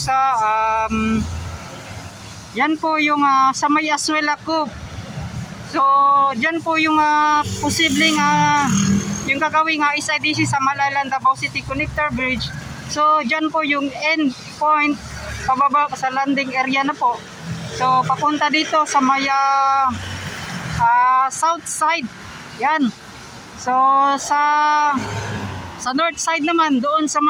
yan po yung sa may Azuela Cove. So dyan po yung posibleng yung gagawing SIDC sa Malalan Davao City Connector Bridge. So dyan po yung end point pababa sa landing area na po. So papunta dito sa may south side. Yan. So sa north side naman doon sa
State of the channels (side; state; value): both; identical; correlation 1.00